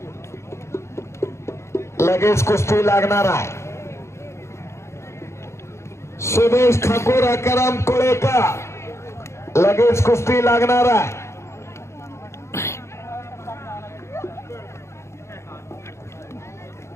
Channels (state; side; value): late; right; 0.13 ms